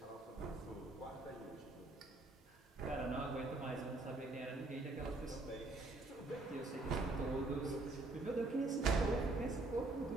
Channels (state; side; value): quieter; left; 3.0 dB